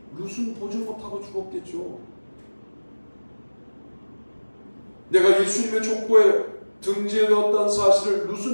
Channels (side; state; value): both; inverted; correlation -1.00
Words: 룻은 보지 못하고 죽었겠죠. 내가 예수님의 족보에 등재되었다는 사실을